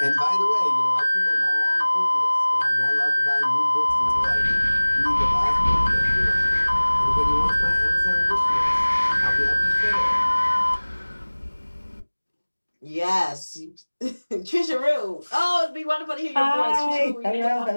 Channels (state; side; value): inverted; both; correlation -1.00